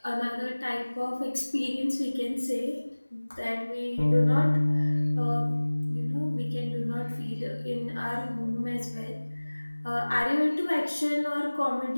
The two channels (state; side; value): inverted; both; correlation -1.00